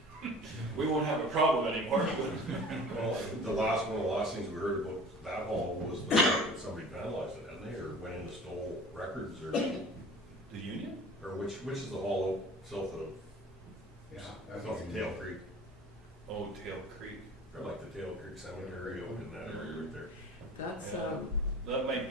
and we won't have a problem anymore. Well, one of the last things we heard about that hall was the fact that somebody vandalized it, hadn't they, or went in and stole records, or The Union? or which is the hall south of Tail Creek, Oh, Tail Creek. or like the Tail Creek Cemetery out in that area right there. That's Yeah. That might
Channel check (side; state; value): both; normal; correlation 0.43